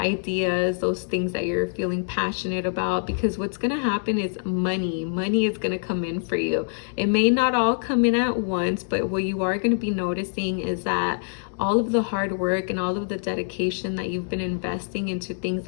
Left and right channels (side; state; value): right; silent; digital silence